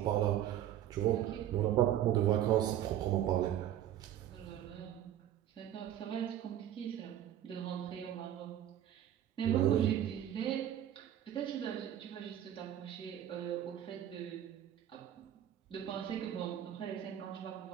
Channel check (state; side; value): quieter; left; 11.3 dB